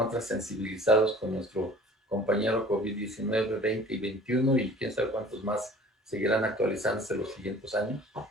sensibilizados con nuestro compañero COVID-19, 20 y 21 y quién sabe cuántos más seguirán actualizándose los siguientes años.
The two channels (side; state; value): both; normal; correlation 0.47